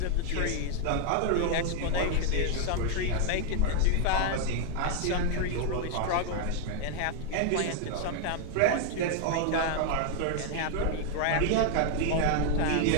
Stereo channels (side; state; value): both; different; correlation 0.00